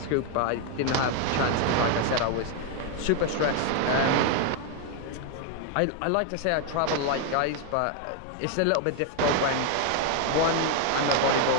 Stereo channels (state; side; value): different; both; correlation 0.01